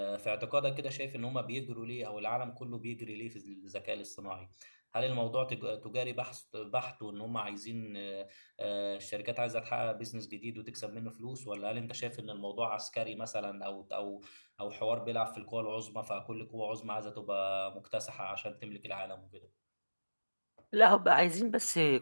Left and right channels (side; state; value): both; inverted; correlation -1.00